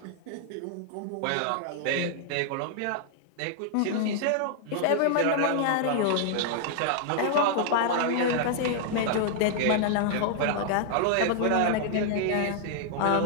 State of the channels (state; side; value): different; both; correlation 0.00